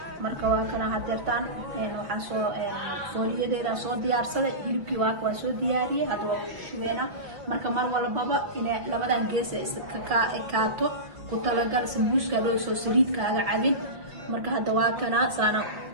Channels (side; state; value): left; late; 5.4 ms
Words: marka waa kana hadeertaan waxaan soo fooliyadeeda soo diyaarsaday hilibkii waa soo diyaariyay hadda waa shubeena marka mar walbaba inay labadan gees iska kaato ku talagal sambuuska loo soo saliidkaaga cabin marka hadda waa kana saana